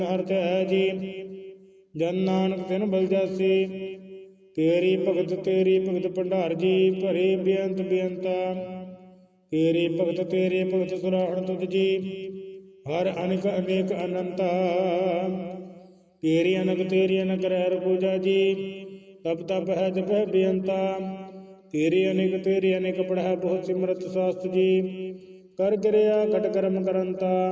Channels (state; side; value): identical; both; correlation 1.00